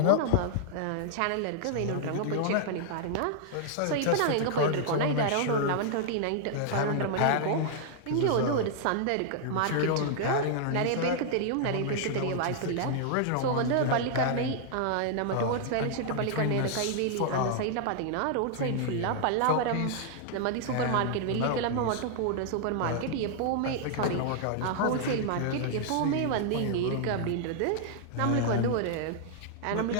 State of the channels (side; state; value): both; different; correlation -0.01